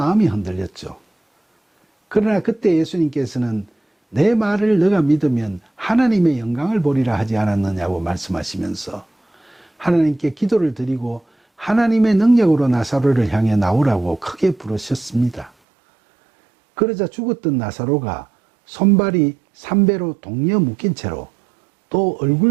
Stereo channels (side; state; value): left; drops out; at 15.5 s